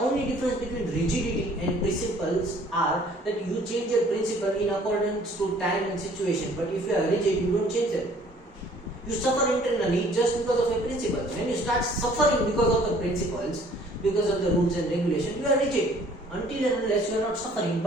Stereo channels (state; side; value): normal; both; correlation 0.56